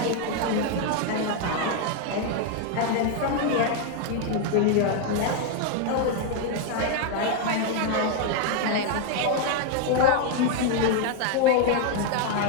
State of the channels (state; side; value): different; both; correlation 0.01